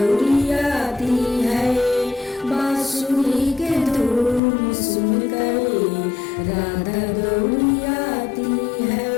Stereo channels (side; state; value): right; drops out; at 4.4 s